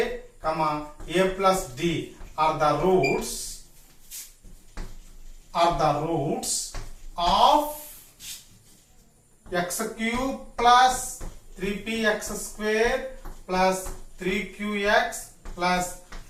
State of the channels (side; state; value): both; identical; correlation 1.00